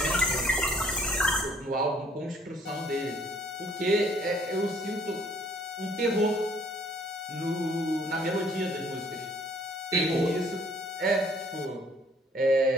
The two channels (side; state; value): both; normal; correlation 0.60